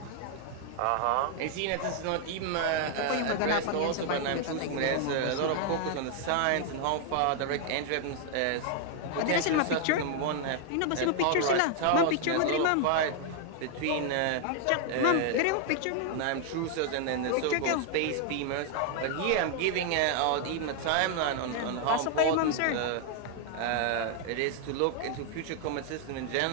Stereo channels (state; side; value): different; both; correlation 0.00